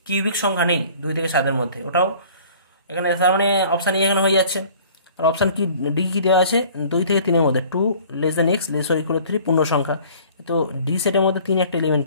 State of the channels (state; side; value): inverted; both; correlation -0.51